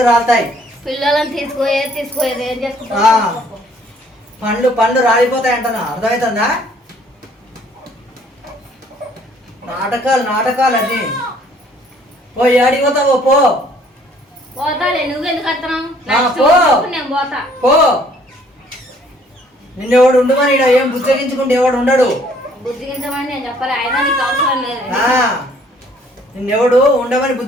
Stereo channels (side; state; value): both; normal; correlation 0.61